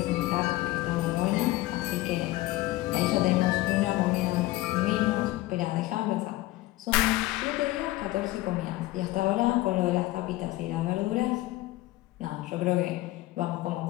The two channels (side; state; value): right; quieter; 17.8 dB